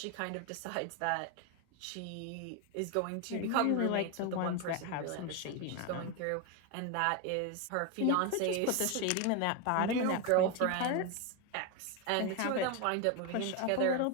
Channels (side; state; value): both; different; correlation 0.02